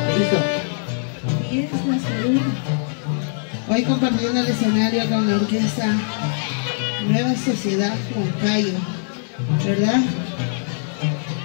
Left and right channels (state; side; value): silent; right; digital silence